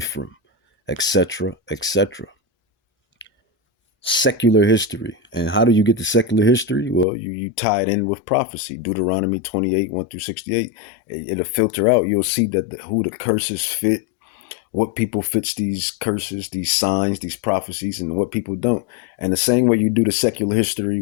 etc., etc. Secular history. And how do you get to secular history? Well, you tie it in with prophecy. Deuteronomy 28, 1 through 68. It'll filter out. You'll see that who the curses fit, what people fits these curses, these signs, these prophecies, and what people don't. And the same way you do the secular history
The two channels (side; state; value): right; drops out; at 7.1 s